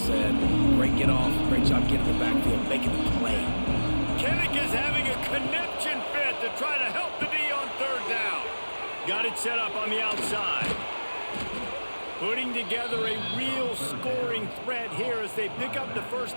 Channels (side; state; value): both; inverted; correlation -1.00